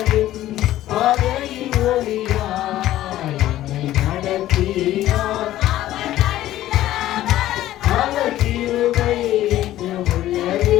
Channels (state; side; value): quieter; right; 14.1 dB